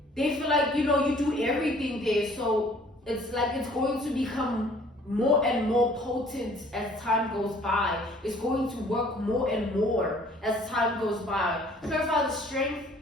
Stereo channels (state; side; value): normal; both; correlation 0.55